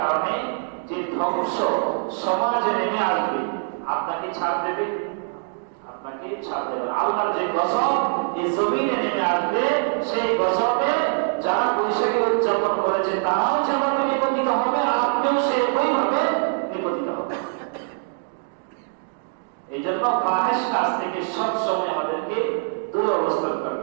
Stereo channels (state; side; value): silent; left; digital silence